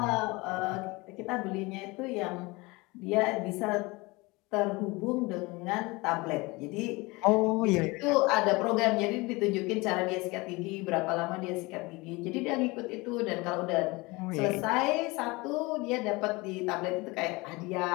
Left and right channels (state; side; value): quieter; right; 24.0 dB